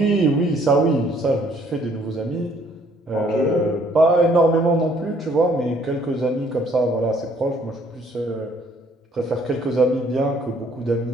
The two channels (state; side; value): normal; both; correlation 0.62